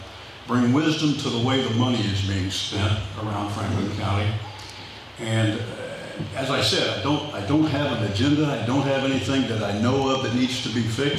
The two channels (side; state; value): both; identical; correlation 1.00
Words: bring wisdom to the way the money is being spent around Franklin County. And as I said, I don't have an agenda. I don't have anything that I know of that needs to be